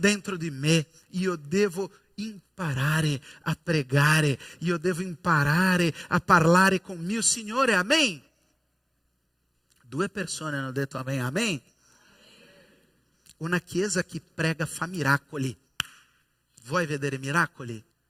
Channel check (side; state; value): both; identical; correlation 1.00